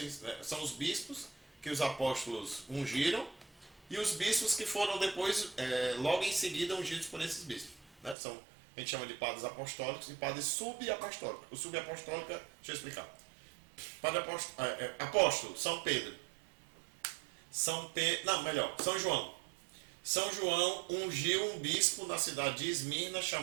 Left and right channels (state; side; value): drops out; left; at 8.2 s